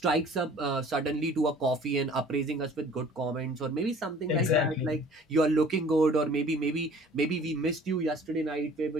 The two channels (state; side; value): normal; both; correlation 0.50